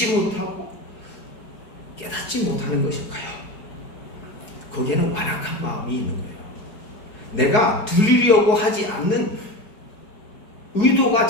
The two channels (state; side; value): late; right; 4.7 ms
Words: 못하고 깨닫지 못하는 것일까요? 거기에는 완악한 마음이 있는 거예요. 내가 들으려고 하지 않는 의도가